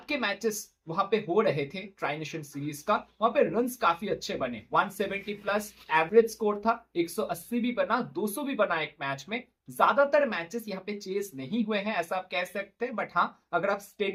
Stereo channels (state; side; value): identical; both; correlation 1.00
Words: के मैचेस वहां पे हो रहे थे ट्राई नेशन सीरीज का, वहां पे रन्स काफी अच्छे बने। 170 प्लस एवरेज स्कोर था, 180 भी बना, 200 भी बना एक मैच में। ज्यादातर मैचेस यहाँ पे चेस नहीं हुए हैं ऐसा आप कह सकते हैं, बट हाँ अगर आप